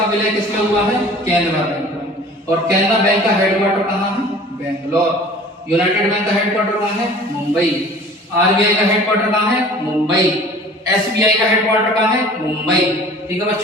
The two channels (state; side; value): normal; both; correlation 0.46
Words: विलय किसमें हुआ है? केनरा बैंक में। और केनरा बैंक का हेडक्वार्टर कहाँ है? बेंगलोर। यूनाइटेड बैंक का हेडक्वार्टर कहाँ है? मुंबई। आरबीआई का हेडक्वार्टर कहाँ है? मुंबई। एसबीआई का हेडक्वार्टर कहाँ है? मुंबई। ठीक है